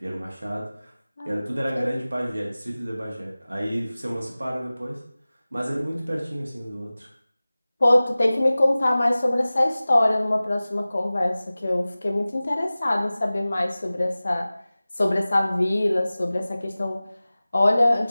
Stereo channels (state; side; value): inverted; both; correlation -0.98